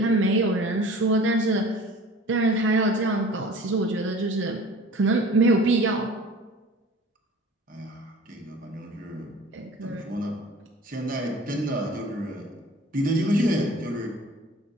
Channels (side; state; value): both; normal; correlation 0.45